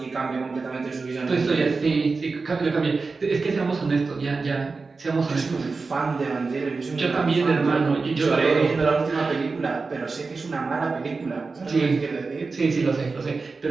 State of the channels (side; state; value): left; quieter; 4.2 dB